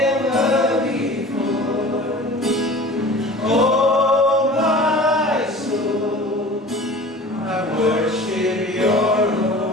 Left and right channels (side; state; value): both; normal; correlation 0.40